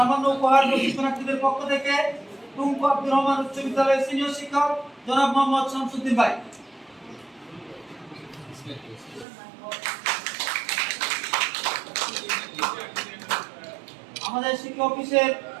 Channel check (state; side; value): drops out; left; at 9.2 s